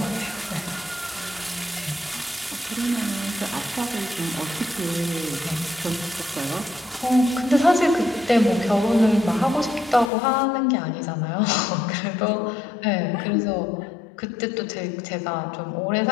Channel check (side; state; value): right; drops out; at 10.1 s